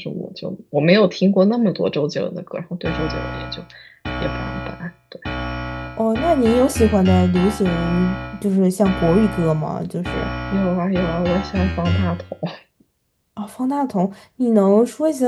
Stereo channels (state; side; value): identical; both; correlation 1.00